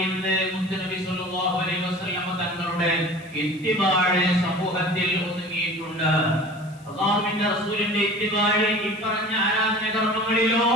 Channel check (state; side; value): noise; left; hiss, 27 dB below the sound